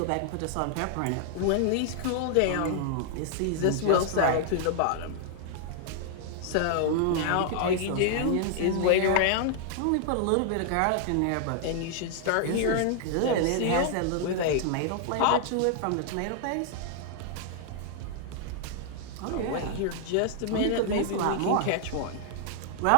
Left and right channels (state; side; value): different; both; correlation -0.01